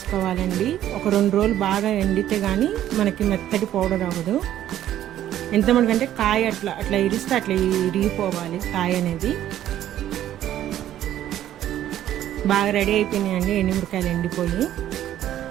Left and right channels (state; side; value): quieter; left; 12.1 dB